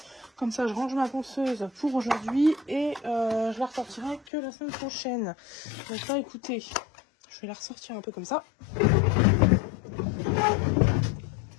Comme ça, je range ma ponceuse pour aujourd'hui et je la ressortirai que la semaine prochaine. Donc là, écoutez, je vais la ressortir un peu comme ça.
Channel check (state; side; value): drops out; right; at 4.2 s